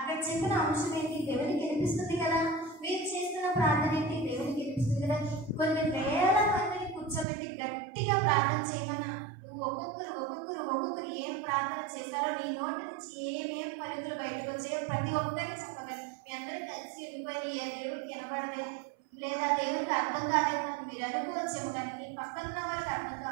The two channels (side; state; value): left; drops out; at 7.2 s